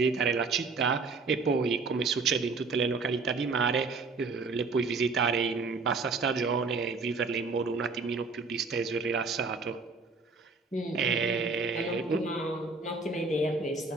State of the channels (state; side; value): quieter; left; 4.2 dB